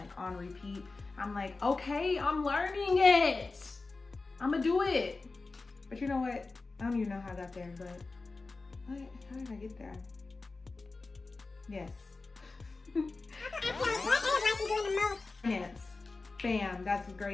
on repeat. I'm like, okay, I'm learning it. I'm gonna do it. But you know what? I don't even know how I got there, but how did I get there? Yes. Finance. Bam, that's the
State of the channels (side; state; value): right; quieter; 3.7 dB